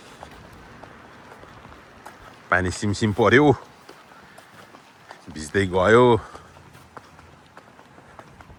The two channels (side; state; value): both; identical; correlation 1.00